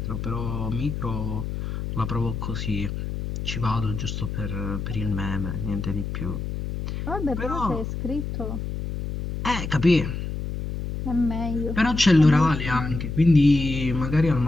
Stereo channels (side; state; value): left; noise; hum, 5 dB below the sound